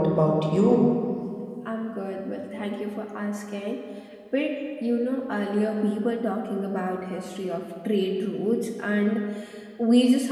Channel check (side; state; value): both; identical; correlation 1.00